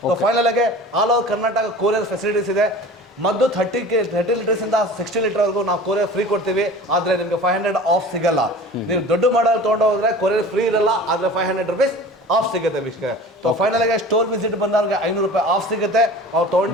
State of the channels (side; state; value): both; normal; correlation 0.40